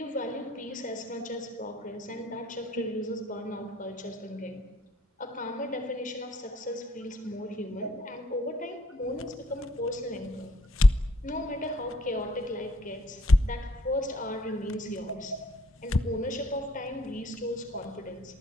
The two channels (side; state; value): both; normal; correlation 0.64